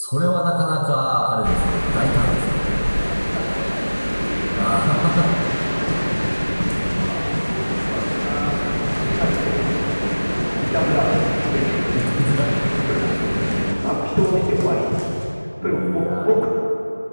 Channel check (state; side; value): inverted; both; correlation -1.00